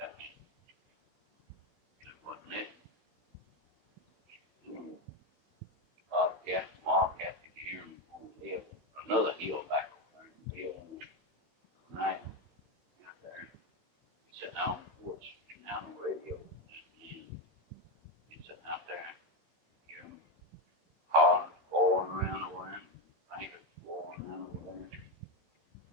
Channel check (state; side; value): late; left; 16 ms